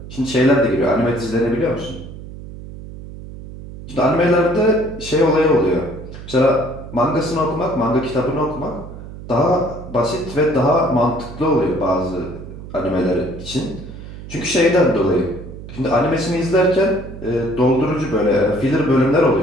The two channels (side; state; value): right; noise; hum, 13 dB below the sound